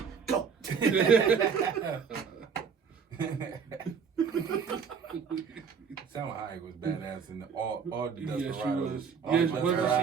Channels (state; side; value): quieter; left; 6.1 dB